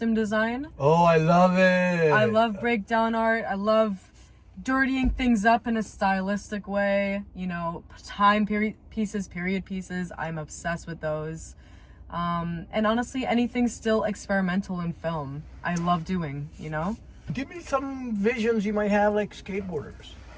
design. Oh, I love it. I love breakdown art. I love dirtying things up in a stylistic way. You know, period pieces. I'm obsessed with those. And honestly, anything still experimental in film, I love doing, you know? Give me some visions you might have, like skateboarders.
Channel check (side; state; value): both; identical; correlation 1.00